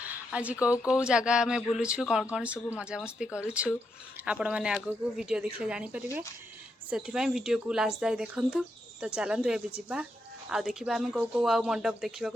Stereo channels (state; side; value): normal; both; correlation 0.82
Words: आज कौ कौ जगह आम बुलूँ कौन कौन सब मजामस्ती करुँ आपण मैंने आग को वीडियो देखले जानीपारे से वीडियो को लास्ट जाए देखूँ तो चलतु ए जा आ देखा आम कौ कौ आउ मंडप